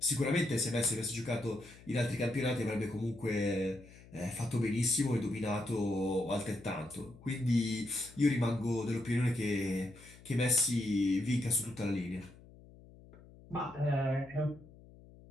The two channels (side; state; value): left; noise; hum, 21 dB below the sound